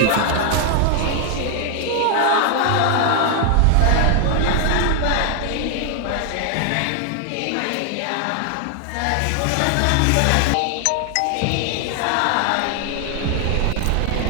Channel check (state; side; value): different; both; correlation 0.00